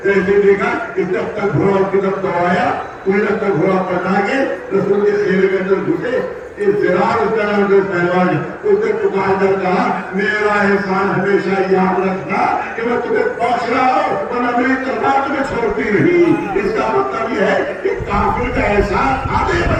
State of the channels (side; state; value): both; identical; correlation 1.00